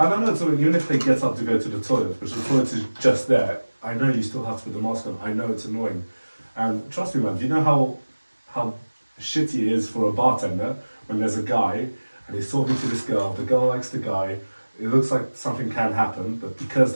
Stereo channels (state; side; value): inverted; both; correlation -1.00